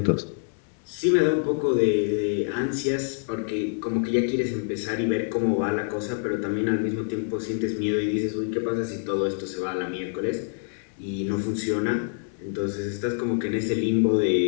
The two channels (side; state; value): right; silent; digital silence